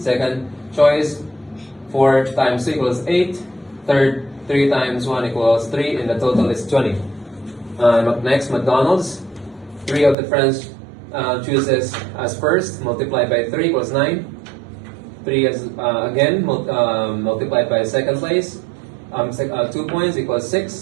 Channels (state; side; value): drops out; left; at 10.2 s